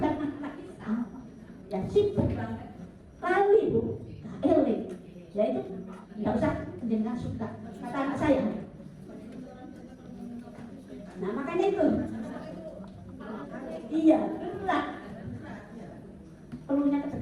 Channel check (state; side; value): identical; both; correlation 1.00